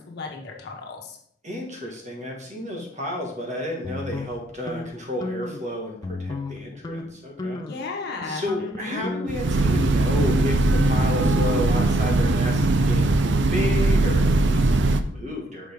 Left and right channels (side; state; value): both; normal; correlation 0.72